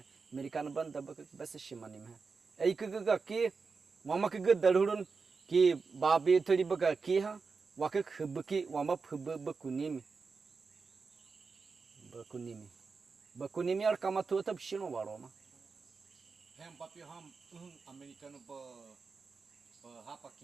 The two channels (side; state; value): left; quieter; 4.7 dB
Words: American ban daba kak besi shimani me ei kaga ki mama kaga dalurun ki babi thari baga ki ha wakak hubki wama hub bakunimi ar kama tu tab shino waro ma Hem papi ham Americano ba hapa